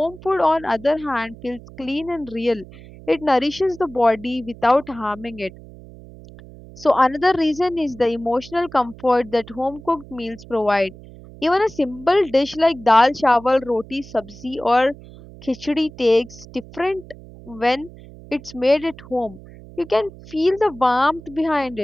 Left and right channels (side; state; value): right; noise; hum, 19 dB below the sound